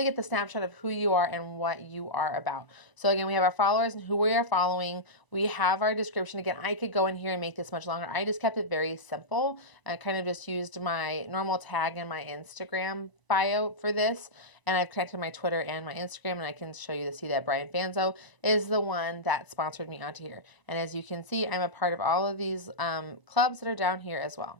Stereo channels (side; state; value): right; late; 1.0 ms